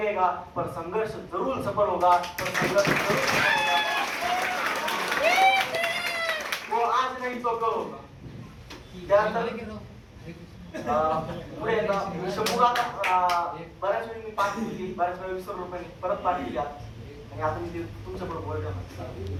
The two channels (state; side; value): identical; both; correlation 1.00